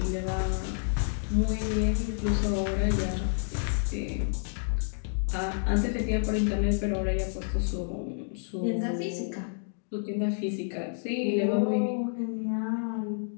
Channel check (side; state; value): right; silent; digital silence